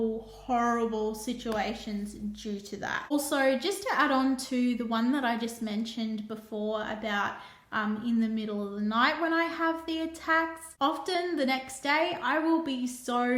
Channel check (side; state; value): both; identical; correlation 1.00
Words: situations due to that. Also, just to add on to the one that I just mentioned before about in the middle of the night when I have the attacks, often the next day I will be